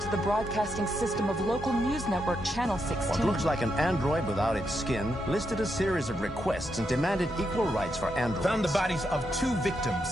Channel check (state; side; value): normal; both; correlation 0.82